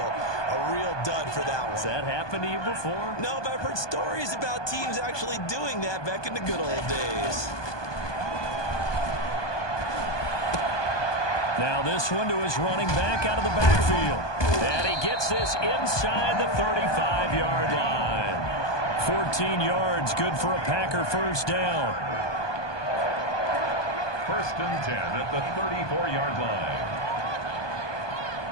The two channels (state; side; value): late; right; 1.2 ms